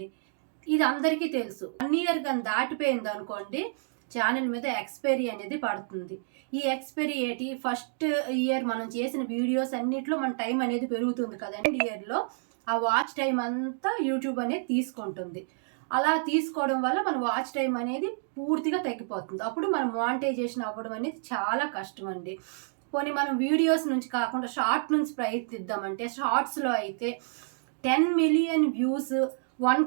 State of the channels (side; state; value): left; silent; digital silence